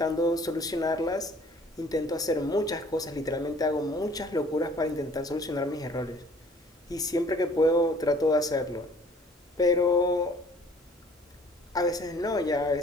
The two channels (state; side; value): normal; both; correlation 0.54